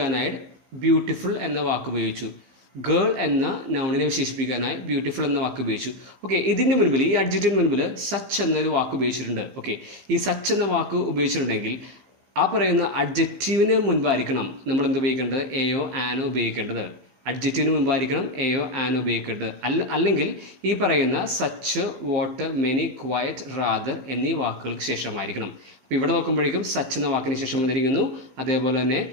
ബ്യൂട്ടിഫുൾ എന്ന വാക്ക് ഉപയോഗിച്ചു. ഗേൾ എന്ന നൗണിനെ വിശേഷിപ്പിക്കാനായി ബ്യൂട്ടിഫുൾ എന്ന വാക്ക് ഉപയോഗിച്ചു. ഓക്കെ, ഇതിൻ്റെ മുൻപിൽ, ഈ അഡ്ജക്റ്റിന് മുൻപിൽ സച്ച് എന്നൊരു വാക്ക് ഉപയോഗിച്ചിട്ടുണ്ട്. ഓക്കെ, ഈ സച്ച് എന്ന വാക്ക് ഉപയോഗിച്ചിട്ടുണ്ടെങ്കിൽ ആ പറയുന്ന അഡ്ജക്റ്റീവിന് മുൻപായിരിക്കണം നമ്മൾ എന്ത് ഉപയോഗിക്കേണ്ടത്? എയോ ആനോ ഉപയോഗിക്കേണ്ടത്. അഡ്ജക്റ്റീവിന് മുമ്പായിരിക്കണം എയോ ആനോ ഉപയോഗിക്കേണ്ടത്. അല്ലെങ്കിൽ ഈ പറയുന്ന such what many quiet rather എന്നീ വാക്കുകൾക്ക് ശേഷമായിരിക്കണം. അപ്പോൾ ഇവിടെ നോക്കുമ്പോഴേക്കും സച്ച് എന്ന വാക്കിന് ശേഷം വന്നിരിക്കുന്നു. അതേപോലെ തന്നെ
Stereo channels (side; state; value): left; late; 15 ms